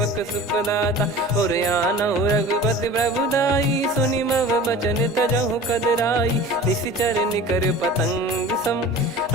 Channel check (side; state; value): both; normal; correlation 0.39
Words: सुखदाता, और आनौ रघुपति प्रभुदाई। सुनि मव बचन तजहु कदराई, निशिचर निकर पतंग सम।